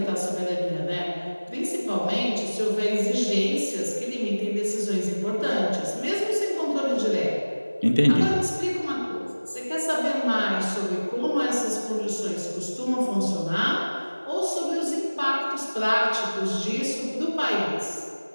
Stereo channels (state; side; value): inverted; both; correlation -1.00